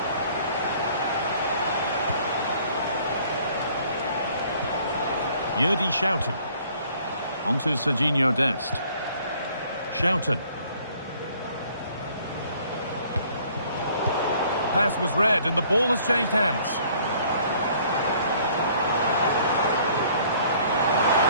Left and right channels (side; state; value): both; inverted; correlation -0.58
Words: Yerdy Schouten. Onto Serginho Dest. Schouten. Pass was read and the ball has changed hands.